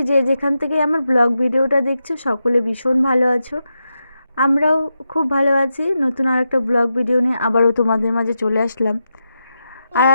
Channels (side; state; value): both; inverted; correlation -0.87